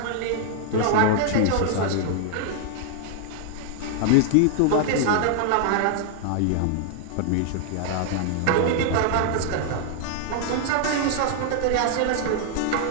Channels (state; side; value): different; both; correlation -0.01